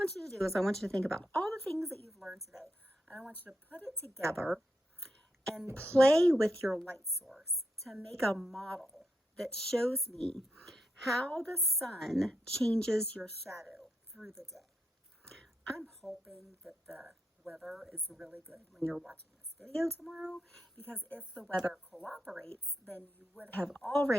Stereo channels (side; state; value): both; normal; correlation 0.84